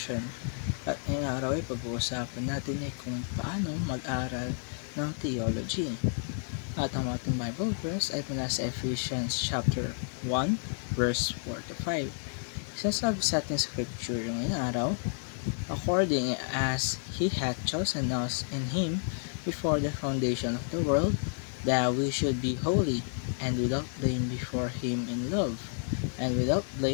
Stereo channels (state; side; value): silent; right; 57 dB below the other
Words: At ngayong araw ay pag-uusapan natin ay kung paano mag-aral ng theology. At ang ating Bible verse ay mula sa Ephesians chapter 1 verse 4 to 5. Sinasabi sa ating scripture ngayong araw, according as He hath chosen us in Him before the foundation of the world, that we should be holy and without blame before Him in love,